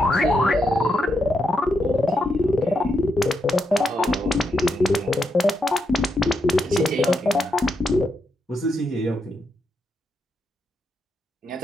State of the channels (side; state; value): both; normal; correlation 0.82